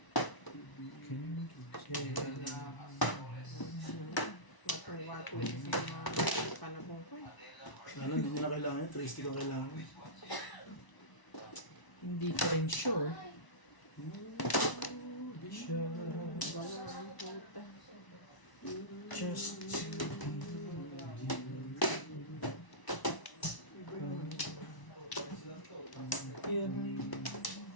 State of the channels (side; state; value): right; late; 1.0 ms